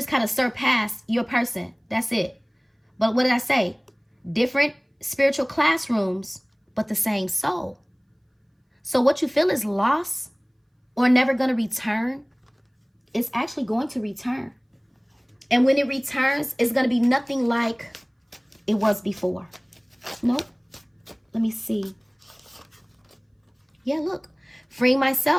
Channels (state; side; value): identical; both; correlation 1.00